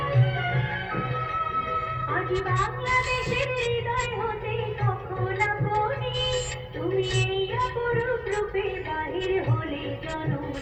আজ বাংলাদেশের হৃদয় হতে কখন আপনি, তুমি এই অপরূপ রূপে বাহির হলে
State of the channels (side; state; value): both; identical; correlation 1.00